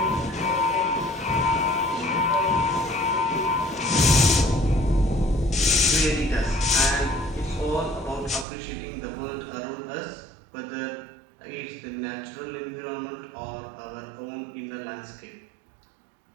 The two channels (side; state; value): left; drops out; at 8.5 s